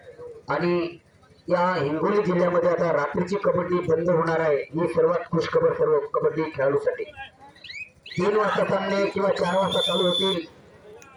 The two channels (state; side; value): identical; both; correlation 1.00